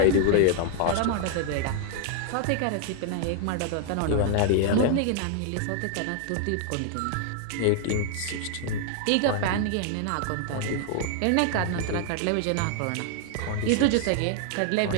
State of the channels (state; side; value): different; both; correlation 0.00